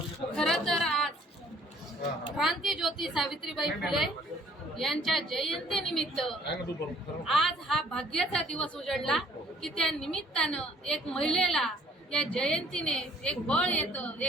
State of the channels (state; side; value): normal; both; correlation 0.59